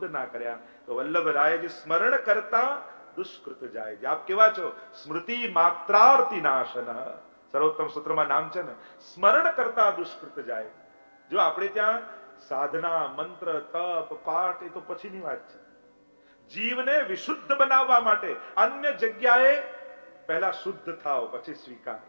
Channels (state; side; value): inverted; both; correlation -1.00